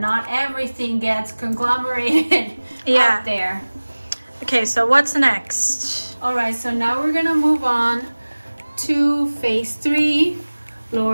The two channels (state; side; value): inverted; both; correlation -1.00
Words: everything gets conglomerated out there. Okay, so what's next? All right, so now we're gonna move on to phase 3,